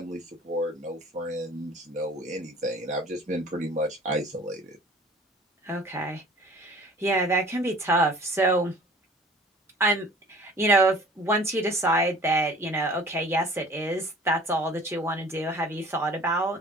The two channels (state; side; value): normal; both; correlation 0.48